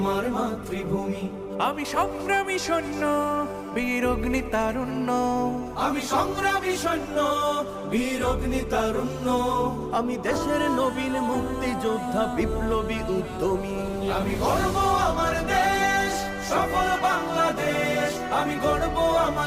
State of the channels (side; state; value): both; identical; correlation 1.00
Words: মাতৃভূমি। আমি সংগ্রামী সৈন্য, বীর অগ্নি তারুণ্য। আমি সংগ্রামী সৈন্য, বীর অগ্নি তারুণ্য। আমি দেশের নবীন মুক্তিযোদ্ধা, বিপ্লবী উদ্যমী। আমি গর্ব আমার দেশ, সফল বাংলাদেশ। আমি গর্ব